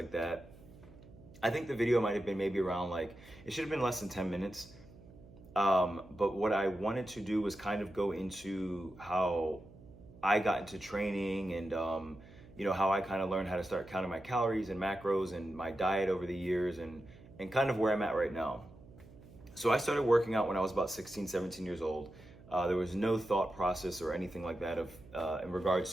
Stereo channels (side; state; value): right; noise; hum, 21 dB below the sound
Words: that. I think the video might have been maybe around it should have been less than 10 minutes. But what I wanted to do was kind of go into how I got into training and how I kind of learned how to start counting my calories and macros and my diet over the years and kind of where I'm at right now. So I started working out when I was about 16, 17 years old. There was no thought process or anything like that in regards